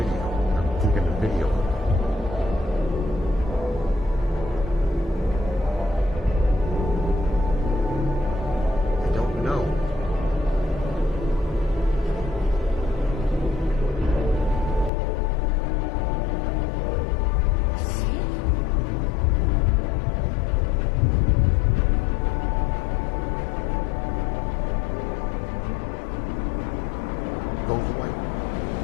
I'm taking the video. I don't know. Goes away.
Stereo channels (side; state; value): right; drops out; at 14.9 s